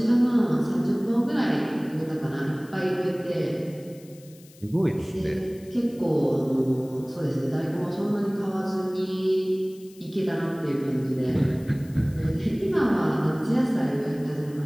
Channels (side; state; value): left; noise; hiss, 25 dB below the sound